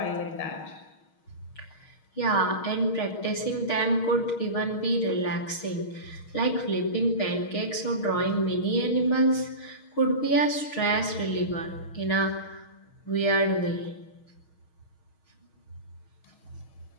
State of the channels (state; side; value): late; right; 6.4 ms